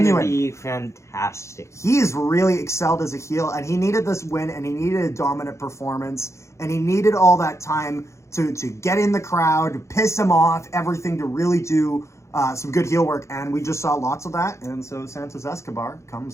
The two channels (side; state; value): right; late; 0.14 ms